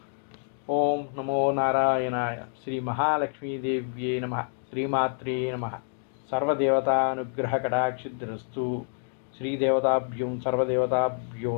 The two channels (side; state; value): right; silent; digital silence